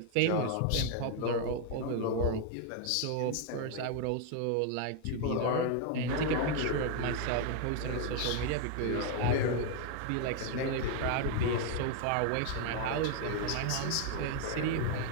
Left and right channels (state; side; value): different; both; correlation 0.00